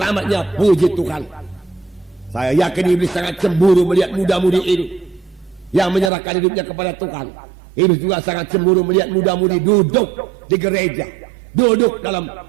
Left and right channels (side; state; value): left; drops out; at 6.1 s